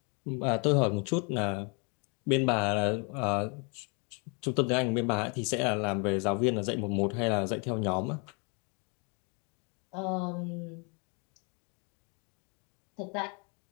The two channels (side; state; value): right; quieter; 34.8 dB